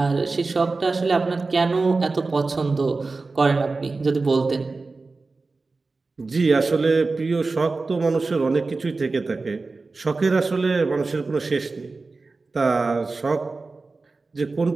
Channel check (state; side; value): quieter; left; 3.8 dB